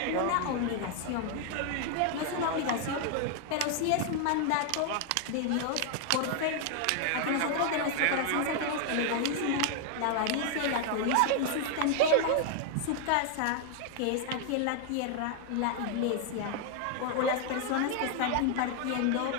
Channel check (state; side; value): different; both; correlation 0.00